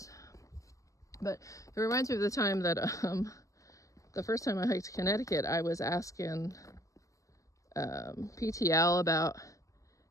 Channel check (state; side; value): late; right; 0.16 ms